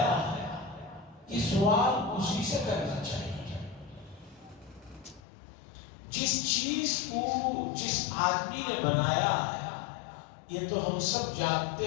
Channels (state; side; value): drops out; right; at 5.2 s